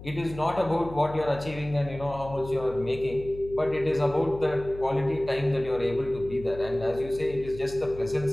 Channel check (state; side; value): noise; left; hum, 14 dB below the sound